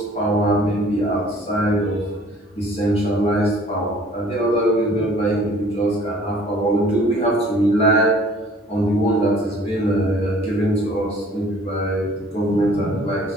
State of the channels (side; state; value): both; normal; correlation 0.53